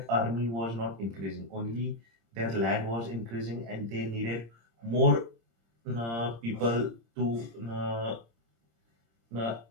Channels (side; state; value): left; late; 26 ms